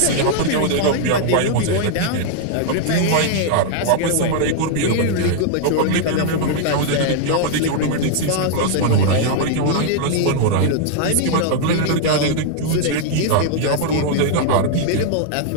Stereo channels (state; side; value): different; both; correlation -0.01